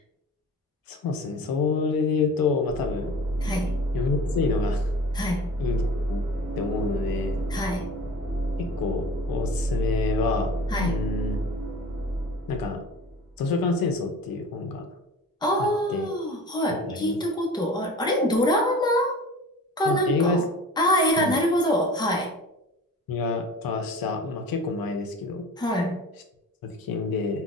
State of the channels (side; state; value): both; normal; correlation 0.40